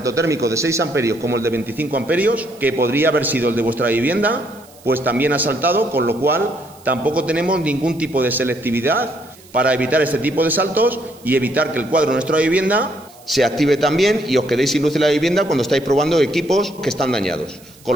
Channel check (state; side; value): noise; right; hiss, 25 dB below the sound